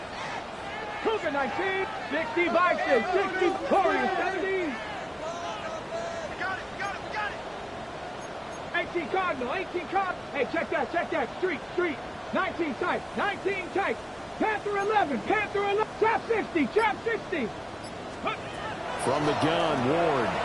Cougar 19, 60 Bison, 60 Warriors 17. 18 Cardinal, 18 Cardinal. Hey, check that. Street. 19 tight, Panther 11, Trap 60. From the gun, Ward.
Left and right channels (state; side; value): identical; both; correlation 1.00